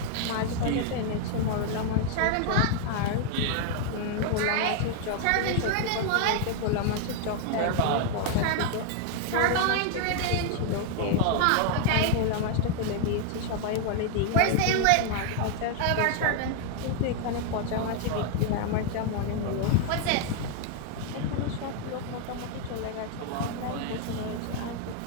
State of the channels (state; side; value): different; both; correlation 0.00